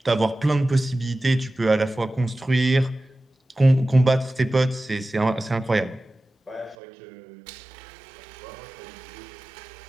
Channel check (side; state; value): left; drops out; at 6.8 s